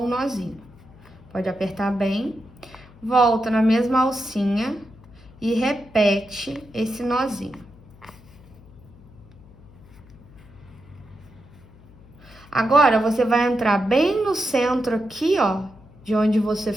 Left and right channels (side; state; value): left; noise; hum, 23 dB below the sound